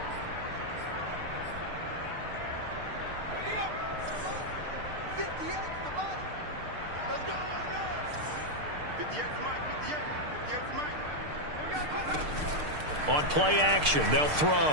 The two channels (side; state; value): left; late; 6.6 ms